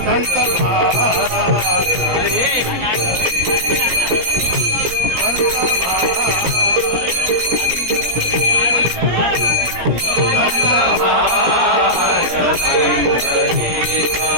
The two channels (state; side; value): late; left; 17 ms